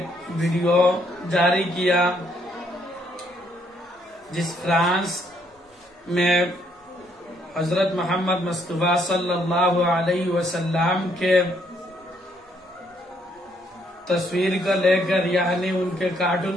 ویڈیو جاری کیا جس فرانس میں حضرت محمد مصطفیٰ صلی اللہ علیہ وسلم کے تصویر کو لے کر یعنی ان کے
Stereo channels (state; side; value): normal; both; correlation 0.70